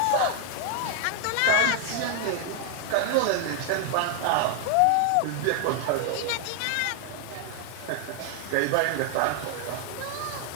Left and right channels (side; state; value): both; different; correlation 0.00